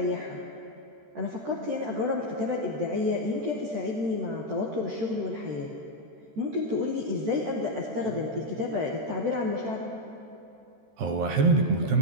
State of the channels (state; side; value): late; left; 13 ms